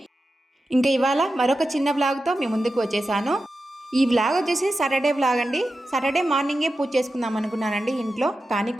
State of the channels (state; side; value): normal; both; correlation 0.92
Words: ఇంకా ఇవాళ మరొక చిన్న వ్లాగ్తో మీ ముందుకు వచ్చేసాను. ఈ వ్లాగ్ వచ్చేసి సాటర్డే వ్లాగ్ అండి. సాటర్డే మార్నింగే పూజ చేసుకుందాం అనుకున్నానండి ఇంట్లో, కానీ